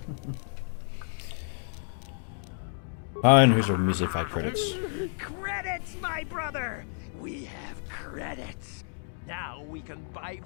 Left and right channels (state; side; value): silent; right; 58 dB below the other